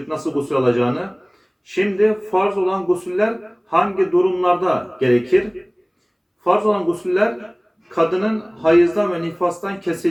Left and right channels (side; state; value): both; identical; correlation 1.00